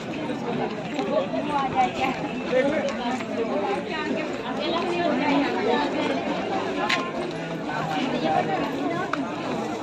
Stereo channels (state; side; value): identical; both; correlation 1.00